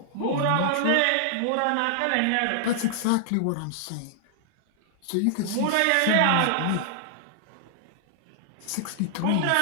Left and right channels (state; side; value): different; both; correlation -0.01